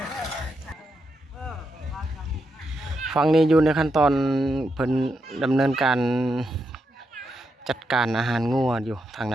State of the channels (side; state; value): both; normal; correlation 0.83